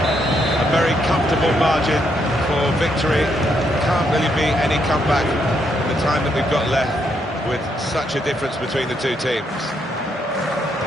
A very comfortable margin for victory. Can't really be any comeback in the time that we've got left with such a difference between the two teams.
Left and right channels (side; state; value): both; normal; correlation 0.76